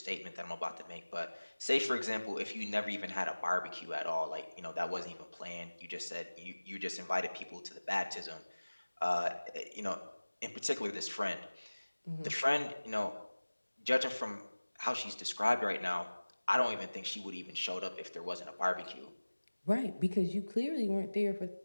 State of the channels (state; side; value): inverted; both; correlation -1.00